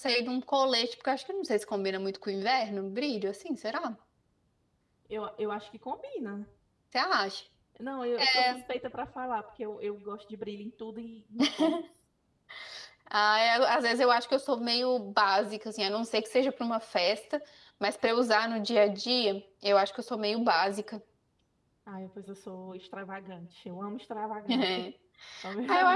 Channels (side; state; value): both; identical; correlation 1.00